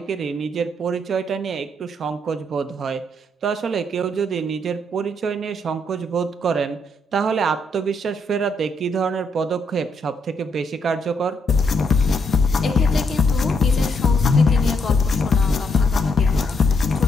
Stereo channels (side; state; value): both; normal; correlation 0.76